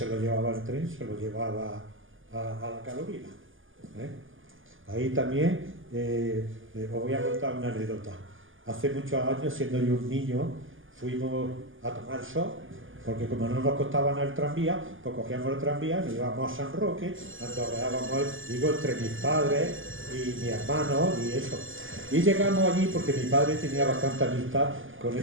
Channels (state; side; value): late; left; 0.58 ms